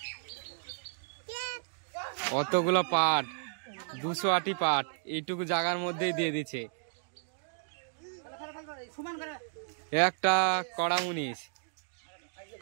অতগুলো পাট, 200 আটি পাট এইটুকু জায়গার মধ্যেই দিয়ে দিচ্ছে। একটা কড়া মুনিশ,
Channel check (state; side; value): silent; left; digital silence